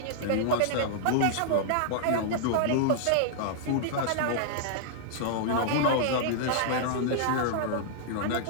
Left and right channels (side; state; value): both; different; correlation -0.01